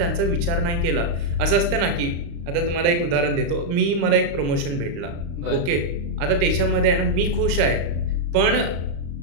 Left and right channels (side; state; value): left; late; 35 ms